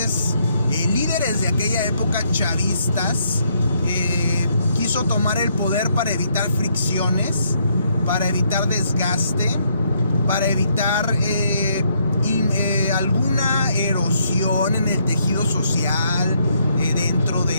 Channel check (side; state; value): both; inverted; correlation -0.72